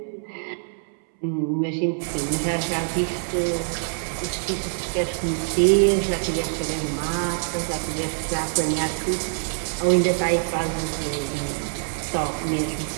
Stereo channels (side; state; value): left; silent; 62 dB below the other